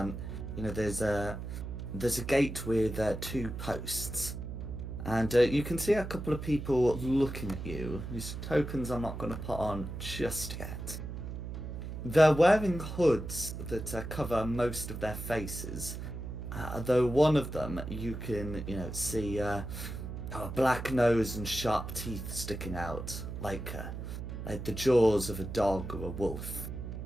there's a gate with 2 posts, and you can see a couple of people looking at you. Whose tokens I'm not going to put on just yet. They're wearing hoods that cover most of their faces. Though one of them you can, see a black nose and sharp teeth sticking out, like the jaws of a dog or a wolf.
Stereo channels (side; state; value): right; noise; hum, 7 dB below the sound